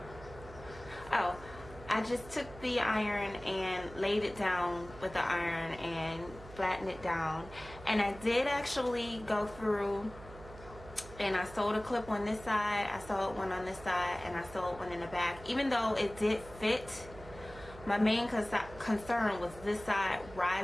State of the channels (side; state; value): right; noise; hum, 17 dB below the sound